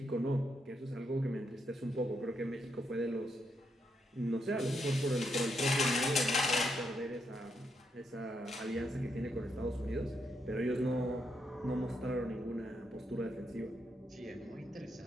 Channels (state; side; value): normal; both; correlation 0.79